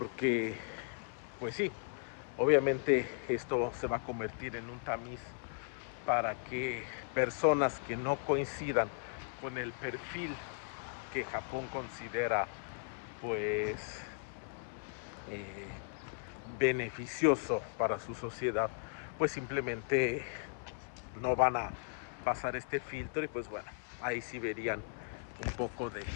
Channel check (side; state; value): right; silent; 53 dB below the other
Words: pues sí, obviamente esto se va a convertir en un tamiz para que personas que no coincidan con el perfil que Japón considera pues eh, beneficioso para su sociedad, pues simplemente no van a pasar este filtro, y pues bueno, ahí sí verían un poco de